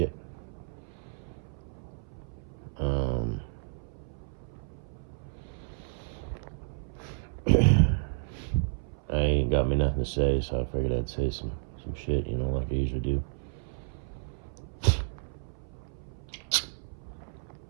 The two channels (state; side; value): silent; left; 57 dB below the other